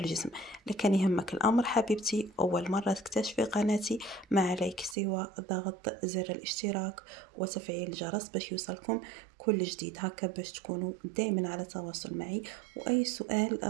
لكن يهمك الامر حبيبتي، اول مره تكتشفي قناتي ما عليك سوى ضغط زر الاشتراك وتفعيل الجرس باش يوصلكم كل جديد، هكا باش تكونوا دائما على تواصل معي، واي سؤال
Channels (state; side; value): drops out; left; at 5.0 s